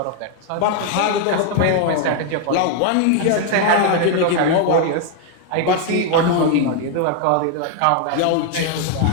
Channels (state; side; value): different; both; correlation 0.00